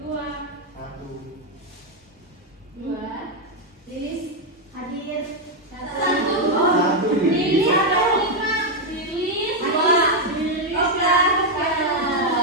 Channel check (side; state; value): both; normal; correlation 0.02